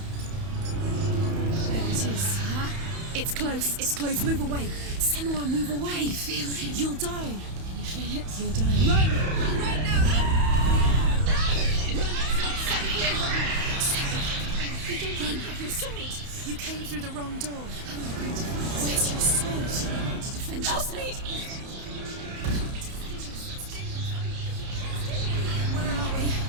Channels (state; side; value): late; left; 31 ms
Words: There it is. Huh? It's close. It's close. Move away. Senua, move away. Can you feel it? You'll die. Can you feel it? You're dying. Run! Run now! Run! It's not safe here. Run! You don't have your sword. You came through the wrong door. How are you going to find us? Where's your sword? To defend yourself. Where are we?